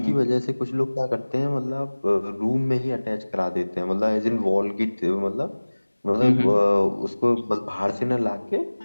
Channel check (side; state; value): both; inverted; correlation -1.00